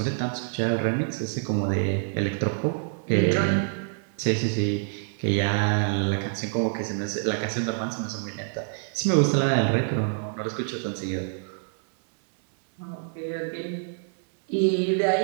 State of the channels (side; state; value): left; silent; digital silence